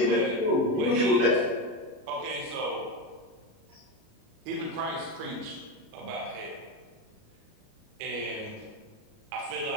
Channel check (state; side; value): late; left; 37 ms